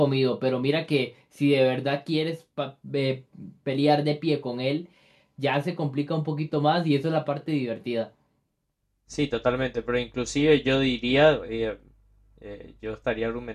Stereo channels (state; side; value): identical; both; correlation 1.00